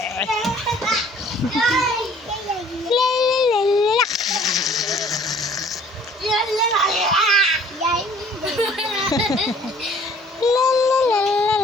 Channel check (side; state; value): both; normal; correlation 0.54